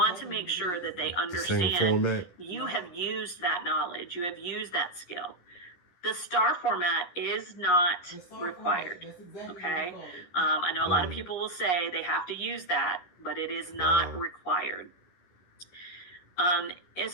to make sure that they understand the same format. You have used that knowledge. You have used that skill. The STAR format is not required, okay? I know a lot of people will say they have to use that, but it is not required.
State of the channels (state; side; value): late; right; 11 ms